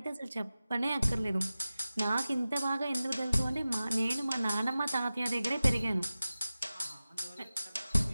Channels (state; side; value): inverted; both; correlation -0.95